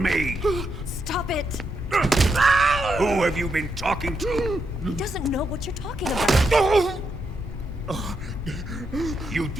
Stop it! Who have you been talking to? He doesn't know what you're talking about. You'd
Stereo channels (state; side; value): normal; both; correlation 0.82